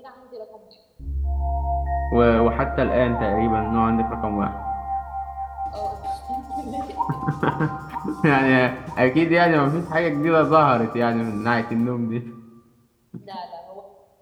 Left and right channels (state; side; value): identical; both; correlation 1.00